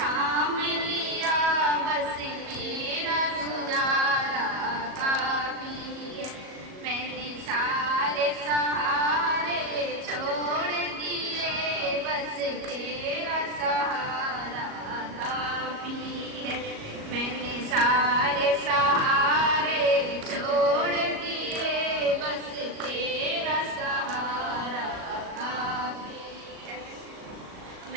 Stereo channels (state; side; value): late; left; 37 ms